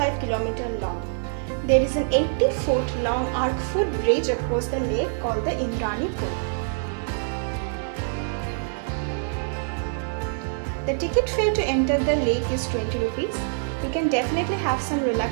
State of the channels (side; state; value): left; silent; 62 dB below the other